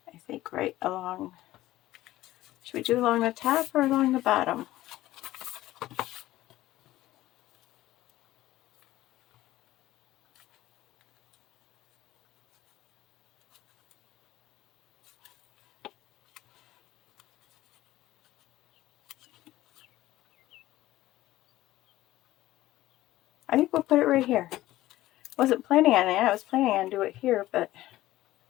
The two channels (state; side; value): quieter; right; 15.8 dB